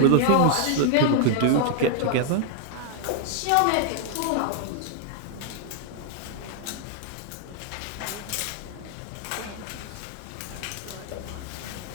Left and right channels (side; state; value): both; different; correlation 0.00